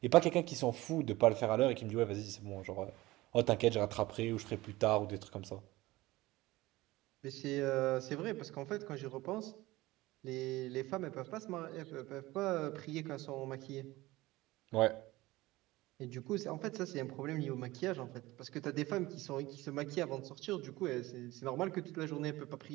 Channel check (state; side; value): quieter; left; 19.1 dB